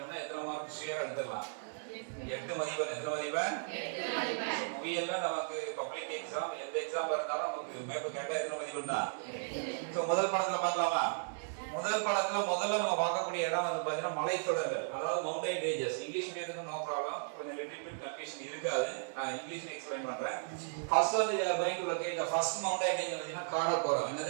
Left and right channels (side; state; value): left; silent; digital silence